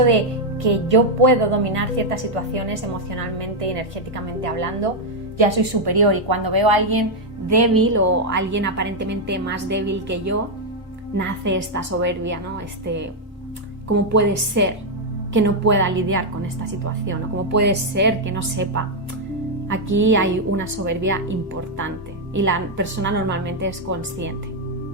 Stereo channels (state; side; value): normal; both; correlation 0.00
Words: de que yo puedo dominar ciertas situaciones emocionalmente y energéticamente hablando, ya soy superior, y cuando veo a alguien débil o a alguien aparentemente más débil que yo, nace esta soberbia, ¿no? ¿Cómo puede ser que no pueda lidiar con esta situación? ¿O cómo puede ser que no sepa? Aquí hay una soberbia importante y la persona normalmente es consciente